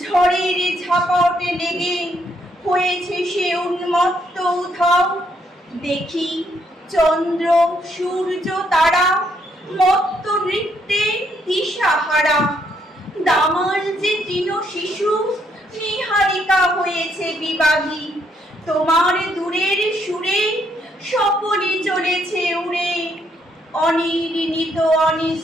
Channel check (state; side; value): normal; both; correlation 0.73